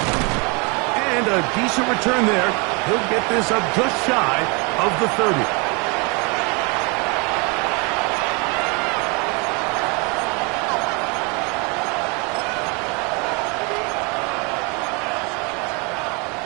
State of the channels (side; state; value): left; quieter; 31.2 dB